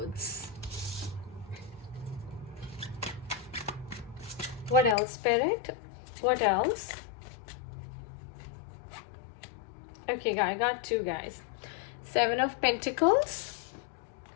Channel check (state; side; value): drops out; right; at 5.0 s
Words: What else, Spirit? What else? Okay, I got two, guys. Seven of Pentacles